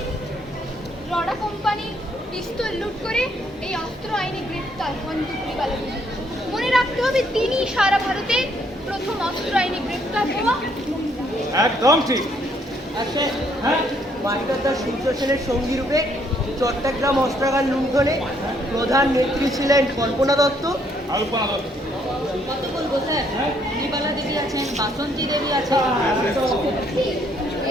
রডা কোম্পানির পিস্তল লুট করে এই অস্ত্র আইনে গ্রেপ্তার বন্দুকরি বালক। মনে রাখতে হবে তিনি সারা ভারতে প্রথম অস্ত্র আইনে গ্রেপ্তার হওয়া মহিলা। একদম ঠিক। আচ্ছা, মাস্টার দাস সূর্য সেনের সঙ্গী রূপে চট্টগ্রাম অস্ত্রাগার লুণ্ঠনে প্রধান নেত্রী ছিলেন কল্পনা দত্ত। কত বলবো স্যার? নির্মলা দেবী আছেন, বাসন্তী দেবী আছেন।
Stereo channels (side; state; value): both; normal; correlation 0.69